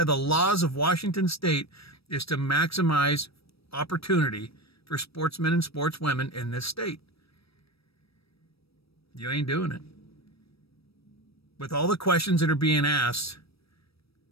the laws of Washington State, is to maximize opportunity for sportsmen and sportswomen in this state. You ain't doing it. With all the questions that are being asked,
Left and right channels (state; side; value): late; right; 0.77 ms